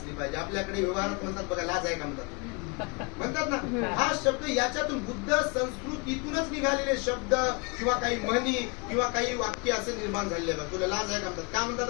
पाहिजे. आपल्याकडे व्यवहारात म्हणतात बघा, लाज आहे का म्हणतात ना, हा शब्द याच्यातून बुद्ध संस्कृतीतूनच निघालेले शब्द किंवा काही म्हणी किंवा काही वाक्य असे निर्माण झालेले बघ. तुला लाज आहे का म्हणतात. का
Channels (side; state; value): right; quieter; 31.7 dB